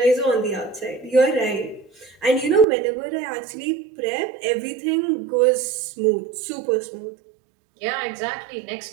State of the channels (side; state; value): left; drops out; at 2.7 s